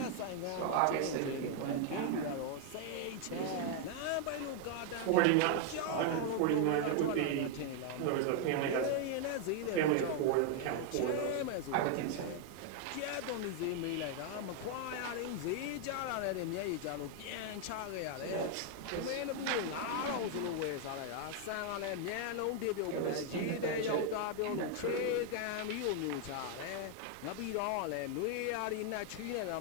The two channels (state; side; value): different; both; correlation 0.01